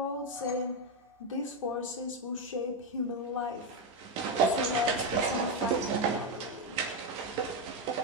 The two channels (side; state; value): both; normal; correlation 0.07